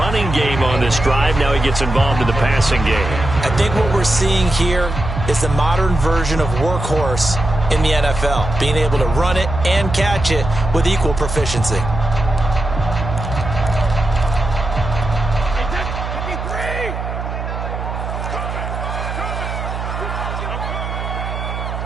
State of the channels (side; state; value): right; noise; hum, 5 dB below the sound